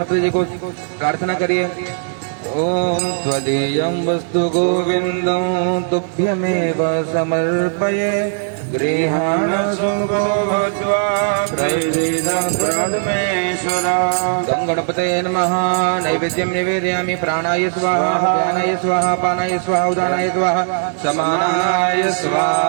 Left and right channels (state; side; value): silent; left; 67 dB below the other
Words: जी को प्रार्थना करिए। ओम त्वदीयं वस्तु गोविंदं तुभ्यमेव समर्पये गृहाण सुखो भूत्वा प्रसीदं परमेश्वर। गं गणपतये नमः। नैवेद्यं निवेदयामि। प्राणाय स्वाहा व्यानाय स्वाहा पानाय स्वाहा उदानाय स्वाहा समानाय